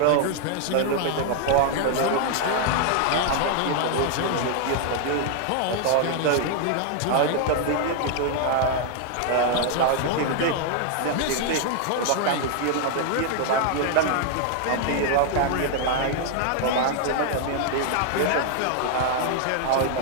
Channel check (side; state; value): both; different; correlation 0.00